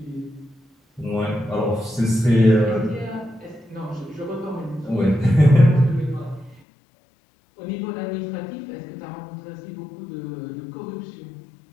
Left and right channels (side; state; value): right; drops out; at 6.6 s